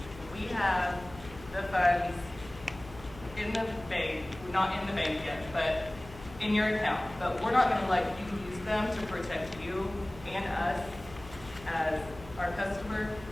we have the funds in the bank, not in the bank yet, but in your account. But we're not going to let you use them to protect you and us as our customer,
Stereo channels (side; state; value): left; noise; hum, 17 dB below the sound